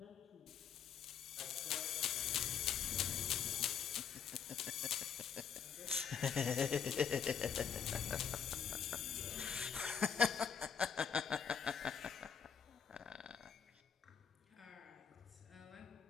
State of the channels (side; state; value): right; quieter; 7.4 dB